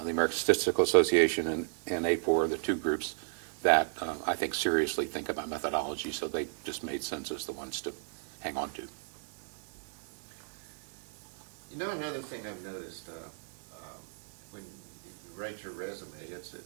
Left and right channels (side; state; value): left; silent; digital silence